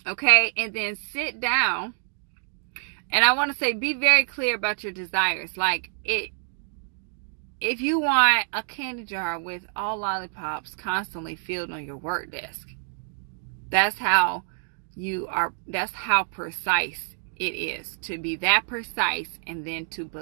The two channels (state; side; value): silent; left; digital silence